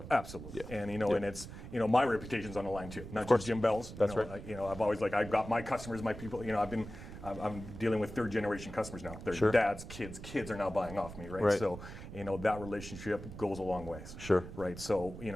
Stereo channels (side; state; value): right; noise; rumble, 12 dB below the sound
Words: Absolutely. And and it's my reputation's on the line too, not just Jim Bell's. That's right. I've always I've got my customers, my people. I'm dealing with third generation customers now. Their dads, kids are now buying off me, right? So that relationship goes a long ways. Sure. Right. So